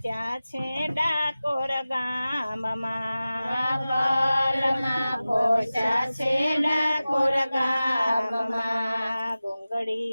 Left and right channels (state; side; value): inverted; both; correlation -0.96